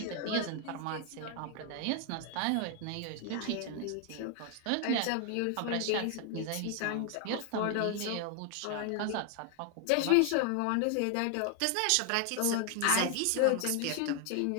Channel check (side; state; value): both; different; correlation 0.00